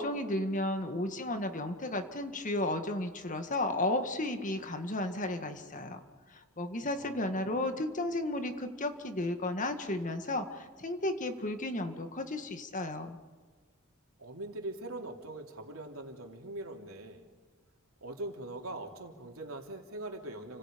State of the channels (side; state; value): both; normal; correlation 0.22